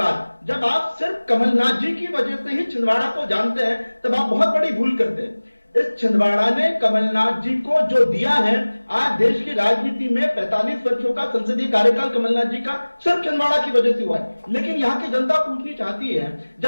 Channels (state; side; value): inverted; both; correlation -1.00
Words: जब आप सिर्फ कमलनाथ जी की वजह से ही छिंदवाड़ा को जानते हैं तब आप बहुत बड़ी भूल करते हैं। इस छिंदवाड़ा ने कमलनाथ जी को जो दिया है, आज देश की राजनीति में 45 वर्षों का संसदीय कार्यकाल कमलनाथ जी का सिर्फ छिंदवाड़ा की वजह से हुआ है। लेकिन यहाँ की जनता पूछनी चाहती है,